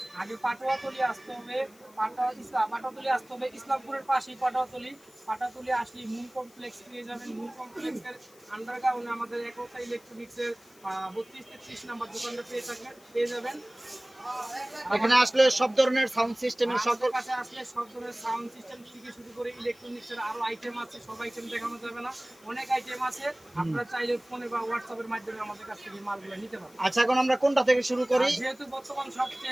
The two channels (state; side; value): noise; left; hiss, 26 dB below the sound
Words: আগে পাটোয়াতলি আসতে হবে। পাটোয়াতলি আসতে হবে, ইসলামপুরের পাশেই পাটোয়াতলি। পাটোয়াতলি আসলে মূল কমপ্লেক্স পেয়ে যাবেন। মূল কমপ্লেক্সের আন্ডারগ্রাউন্ডে আমাদের একতা ইলেকট্রনিক্সের 32-33 নাম্বার দোকানটা পেয়ে যাবেন। এখানে আসলে সব ধরনের সাউন্ড সিস্টেমের সকল কাছে আসলে সব ধরনের সাউন্ড সিস্টেম থেকে শুরু করে ইলেকট্রনিক্সের আরো আইটেম আছে। সব আইটেম দেখানো যাবে না, অনেক আইটেম আছে। আপনারা চাইলে ফোনে বা হোয়াটসঅ্যাপের মাধ্যমে আমাদের কাছ থেকে মালগুলো নিতে পারবেন। আচ্ছা, এখন আমরা কোনটা থেকে শুরু করি? যেহেতু বর্তমান